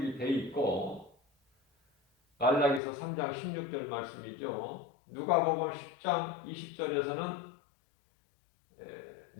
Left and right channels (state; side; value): drops out; right; at 2.8 s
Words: 돼 있고, 말라기서 3장 16절 말씀이죠. 누가복음 10장 20절에서는